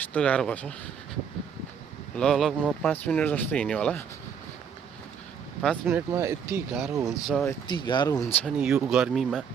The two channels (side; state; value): left; quieter; 7.2 dB